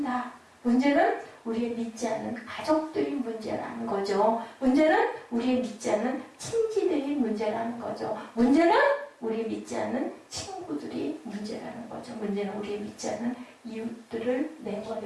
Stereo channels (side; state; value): both; identical; correlation 1.00